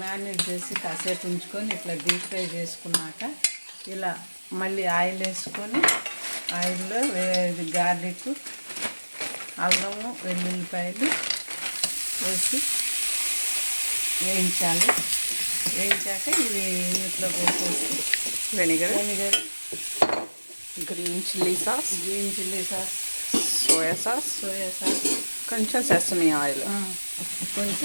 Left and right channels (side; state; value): both; inverted; correlation -1.00